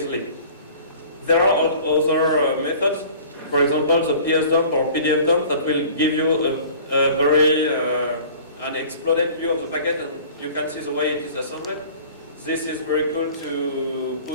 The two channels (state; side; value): inverted; both; correlation -0.46